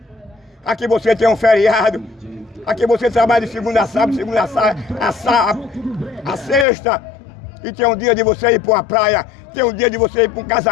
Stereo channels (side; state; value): right; drops out; at 6.7 s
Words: Aqui você tem um feriado. Aqui você trabalha de segunda a sábado, a sexta. E tem um dia de você ir para uma praia. Tem um dia de você ir para um